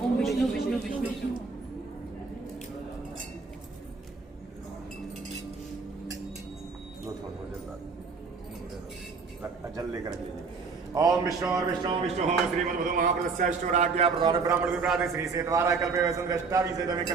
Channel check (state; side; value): quieter; left; 4.7 dB